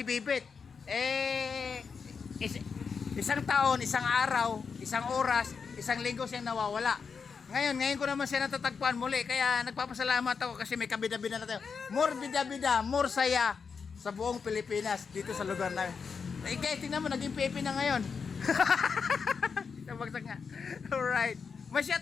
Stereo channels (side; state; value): right; quieter; 5.7 dB